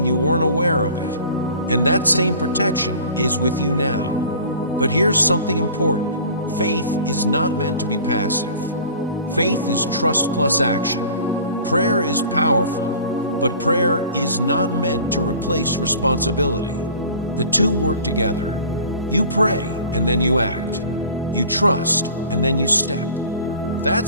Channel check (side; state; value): both; inverted; correlation -0.44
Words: you weren't aware of it. And that same protection is with you now. But here's something important. Faith is not meant to be passive. Faith is trust plus action. Prayer is powerful, but prayer is not meant to replace responsibility. The two work together. You pray and then you act. You trust and then you step.